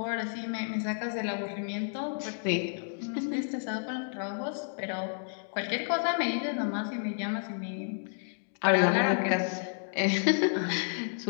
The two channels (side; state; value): right; silent; digital silence